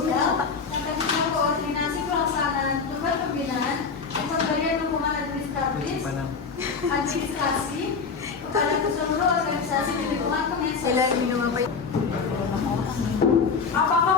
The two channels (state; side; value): quieter; right; 5.2 dB